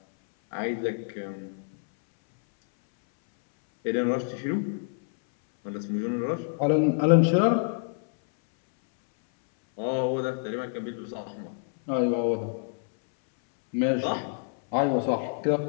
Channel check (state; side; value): silent; right; 60 dB below the other